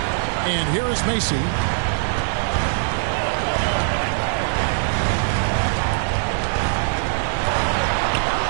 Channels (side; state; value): left; silent; digital silence